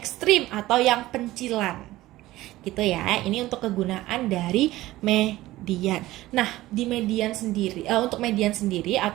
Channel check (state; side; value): quieter; left; 16.9 dB